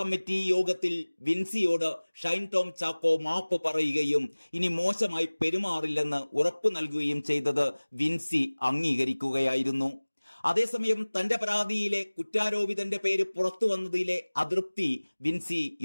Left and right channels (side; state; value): both; inverted; correlation -1.00